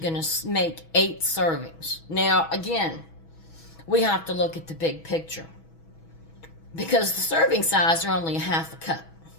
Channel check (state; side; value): late; right; 6.2 ms